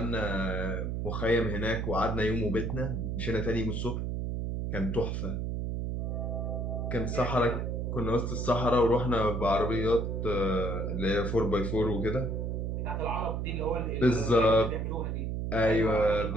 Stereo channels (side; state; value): right; noise; hum, 2 dB below the sound